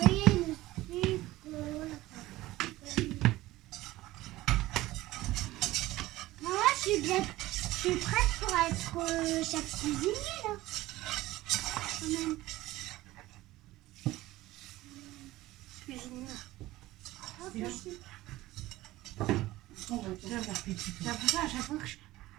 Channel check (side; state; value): left; quieter; 17.4 dB